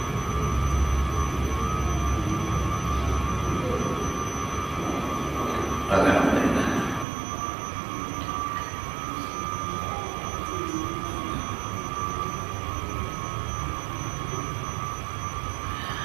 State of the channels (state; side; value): drops out; left; at 7.1 s